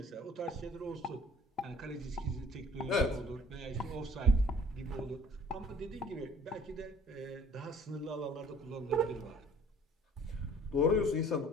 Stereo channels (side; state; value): both; normal; correlation 0.52